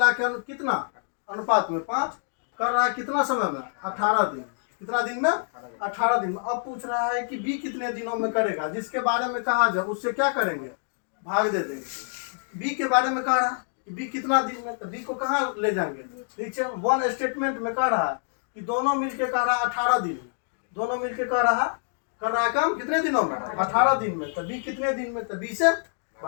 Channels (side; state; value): right; silent; digital silence